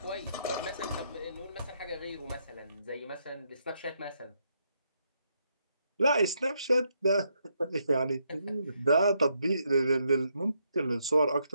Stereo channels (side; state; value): both; inverted; correlation -0.77